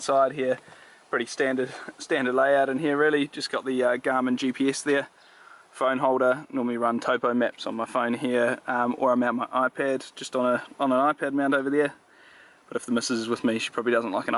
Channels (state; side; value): identical; both; correlation 1.00